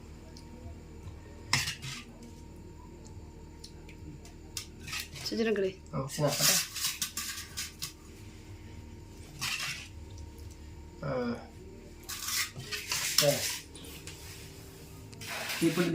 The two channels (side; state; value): both; identical; correlation 1.00